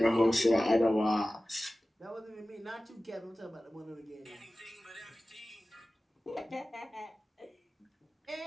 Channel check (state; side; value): normal; both; correlation 0.97